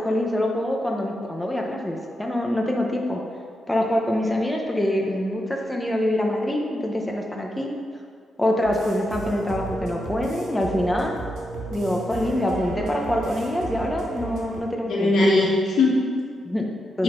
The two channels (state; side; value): normal; both; correlation 0.85